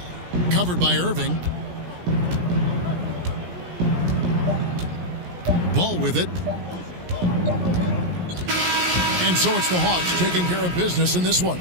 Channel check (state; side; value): late; left; 17 ms